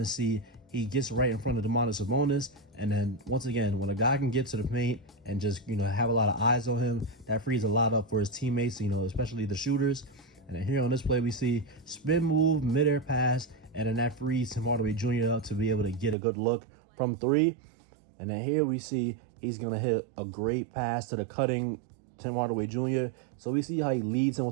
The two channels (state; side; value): drops out; left; at 16.2 s